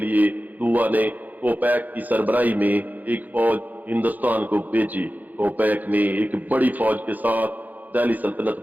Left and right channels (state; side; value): late; left; 0.082 ms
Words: दुआ ने कोपैक की सरबराही में एक फौज हिंदुस्तान को भेजी। कोपैक ने एक बड़ी फौज के साथ दिल्ली सल्तनत